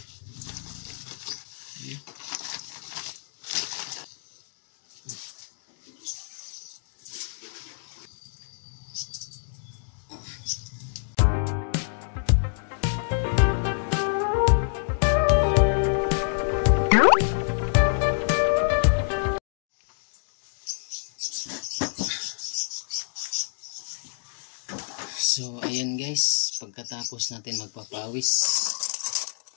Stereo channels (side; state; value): right; silent; digital silence